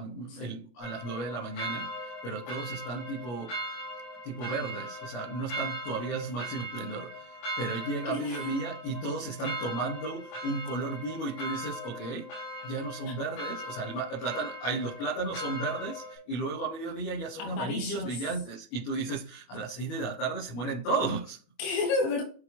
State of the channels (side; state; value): right; late; 26 ms